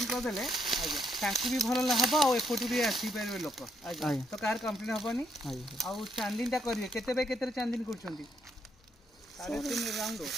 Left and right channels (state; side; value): normal; both; correlation 0.74